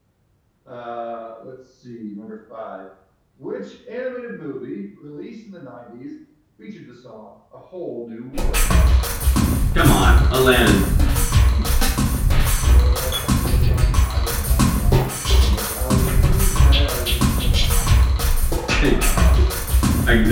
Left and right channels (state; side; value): identical; both; correlation 1.00